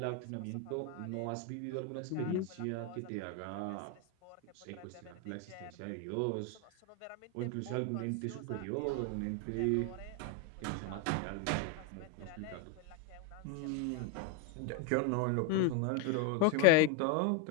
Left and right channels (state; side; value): different; both; correlation 0.02